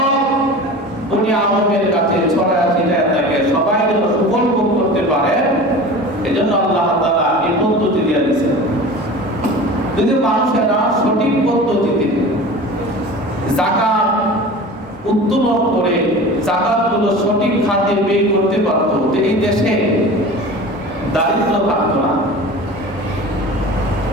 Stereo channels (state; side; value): normal; both; correlation 0.36